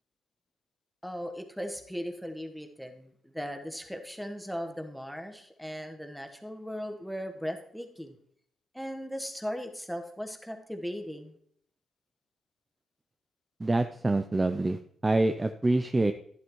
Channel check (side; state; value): both; normal; correlation 0.97